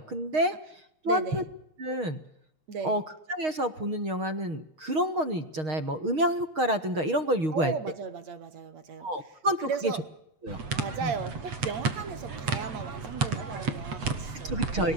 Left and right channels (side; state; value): left; late; 6.4 ms